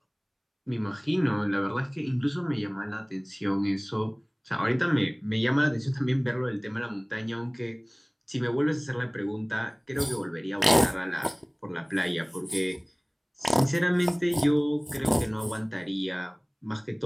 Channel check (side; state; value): both; identical; correlation 1.00